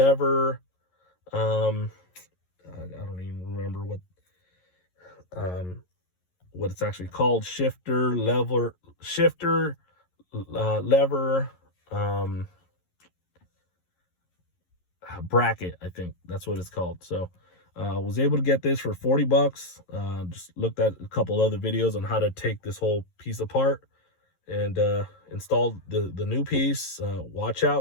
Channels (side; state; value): right; late; 11 ms